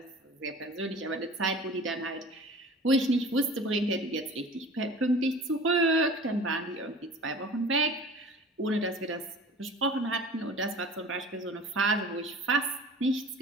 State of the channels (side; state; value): both; normal; correlation 0.42